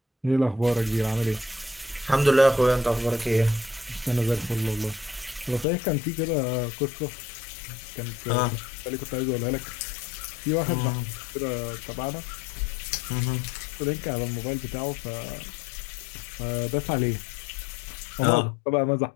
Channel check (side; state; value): right; drops out; at 5.7 s